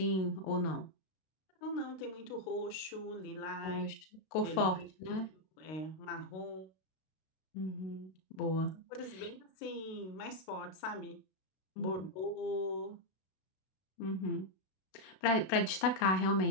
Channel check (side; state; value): right; late; 32 ms